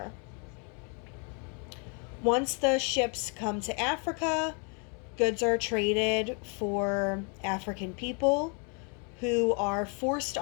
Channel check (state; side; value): quieter; right; 37.1 dB